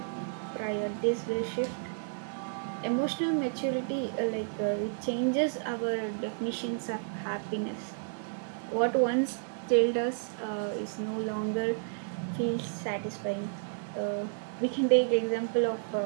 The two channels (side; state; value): left; silent; 57 dB below the other